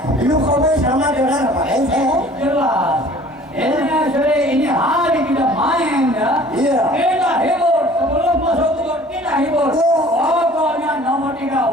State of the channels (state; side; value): normal; both; correlation 0.50